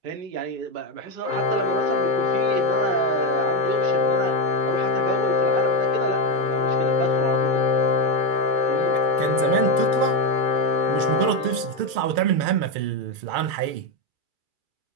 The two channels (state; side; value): late; left; 2.3 ms